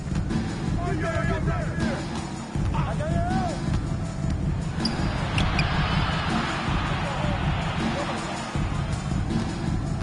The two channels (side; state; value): both; identical; correlation 1.00